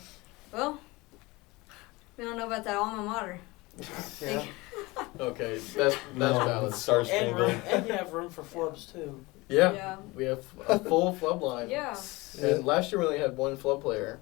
Well, we don't know about that alma mater. Yeah. Okay, that's valid. Star And Spangled. and you have room for flubs too. Yeah, we have a full flub line. Yeah. And last year we only had 1 flub player,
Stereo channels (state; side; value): quieter; right; 22.8 dB